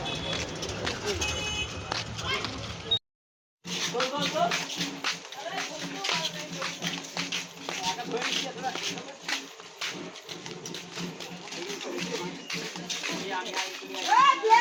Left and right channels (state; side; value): identical; both; correlation 1.00